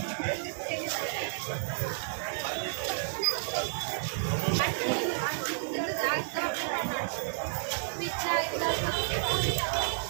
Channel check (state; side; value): silent; left; 57 dB below the other